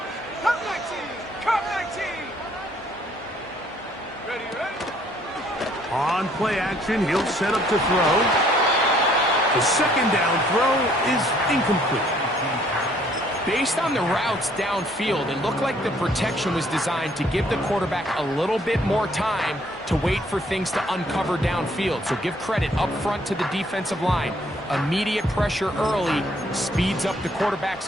Cut 19, cut 19. Ready. On play action, he'll set up to throw. The 2nd down throw is incomplete. Based on the routes downfield, it looked like the protection was designed to give the quarterback a little bit more time to wait for things to uncover downfield. So give credit up front to the defensive line. Immediate pressure early speeds up the quarterback's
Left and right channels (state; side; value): normal; both; correlation 0.63